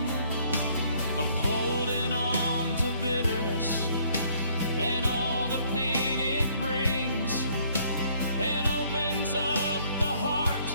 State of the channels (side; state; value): both; inverted; correlation -0.63